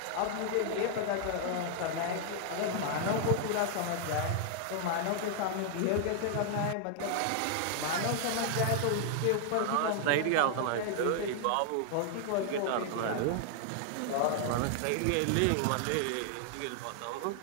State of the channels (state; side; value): different; both; correlation 0.00